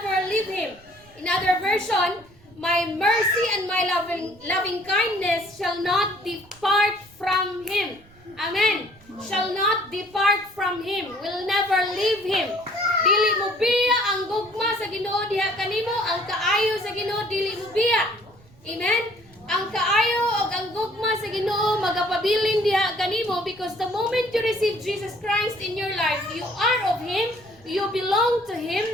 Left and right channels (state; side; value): noise; right; rumble, 27 dB below the sound